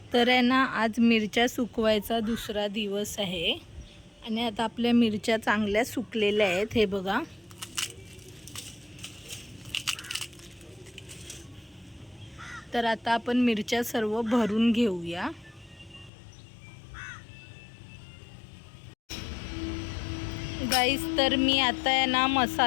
तर आहे ना आज मिरच्या सुकवायचा दुसरा दिवस आहे आणि आता आपल्या मिरच्या चांगल्या सुकलेल्या आहेत. हे बघा, तर आता आपण मिरच्या सर्व भरून घेऊया. गाईस, तर मी आता आहे ना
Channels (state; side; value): drops out; right; at 16.1 s